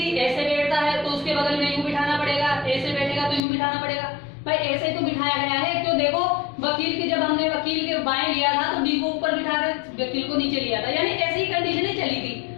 ऐसे बैठता है तो उसके बगल में यूं बिठाना पड़ेगा, ऐसे बैठेगा तो यूं बिठाना पड़ेगा। भाई ऐसे तो बिठाया गया है, क्यों, देखो वकील के, जब हमने वकील के बाएं लिया था तो डी को ऊपर बिठा कर वकील को नीचे लिया था, यानी ऐसी कंडीशन चली थी।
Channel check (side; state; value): right; drops out; at 3.4 s